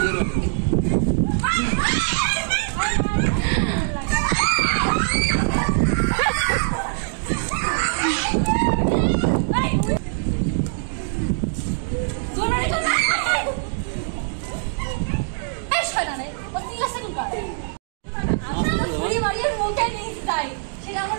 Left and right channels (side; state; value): left; silent; digital silence